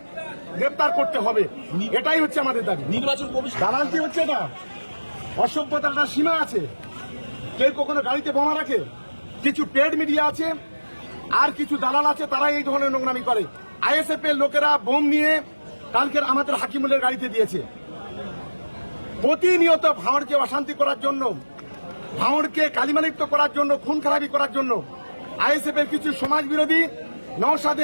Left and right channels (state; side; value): inverted; both; correlation -1.00